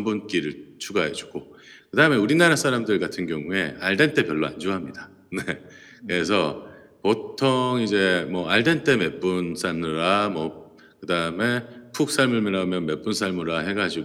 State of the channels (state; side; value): identical; both; correlation 1.00